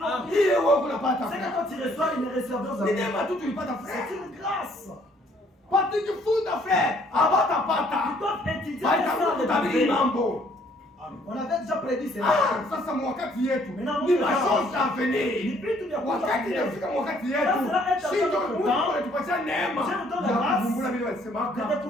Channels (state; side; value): normal; both; correlation 0.63